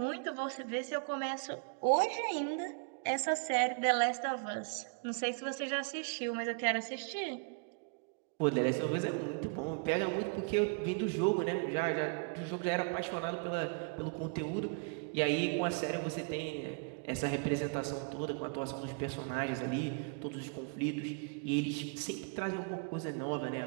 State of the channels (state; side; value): quieter; left; 37.7 dB